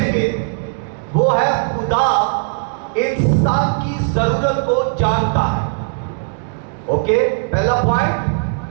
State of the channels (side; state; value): left; silent; digital silence